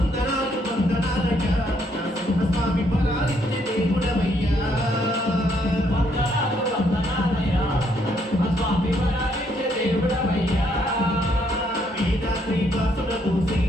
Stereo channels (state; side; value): normal; both; correlation 0.71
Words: వందనాలయ్యా నరసింహ స్వామి మరణించి దేవుడవయ్యా వందనాలు వందనాలయ్యా స్వామి మరణించి దేవుడవయ్యా వేదాద్రి వాసుడవు శ్రీ